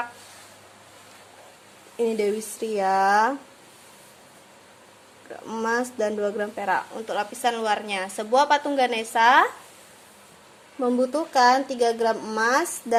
Ini Dewi Sri ya. Emas dan 2 gram perak untuk lapisan luarnya. Sebuah patung Ganesha membutuhkan 3 gram emas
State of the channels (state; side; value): identical; both; correlation 1.00